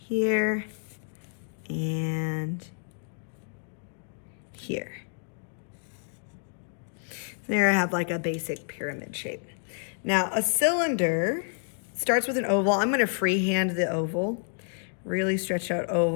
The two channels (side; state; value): right; silent; 59 dB below the other